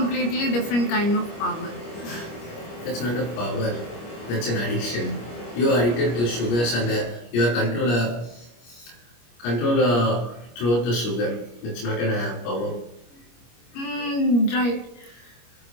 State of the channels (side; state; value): right; late; 25 ms